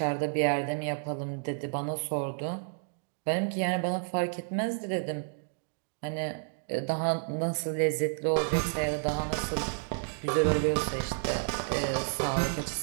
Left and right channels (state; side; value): silent; left; digital silence